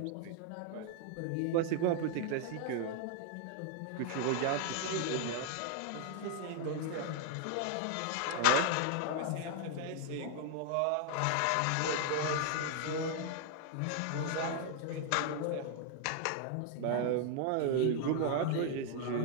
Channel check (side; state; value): both; different; correlation 0.00